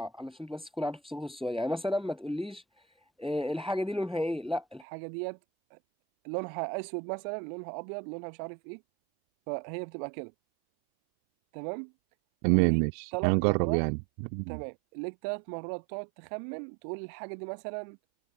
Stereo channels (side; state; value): left; drops out; at 4.9 s